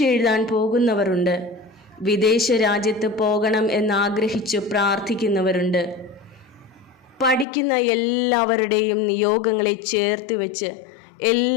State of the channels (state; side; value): drops out; right; at 7.5 s